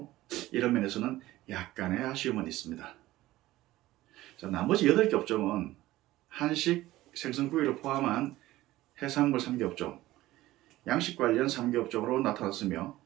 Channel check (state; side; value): quieter; left; 16.6 dB